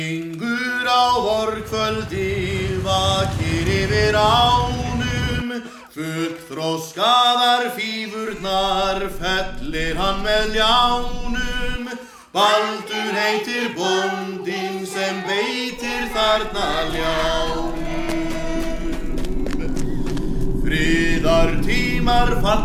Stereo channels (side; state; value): both; identical; correlation 1.00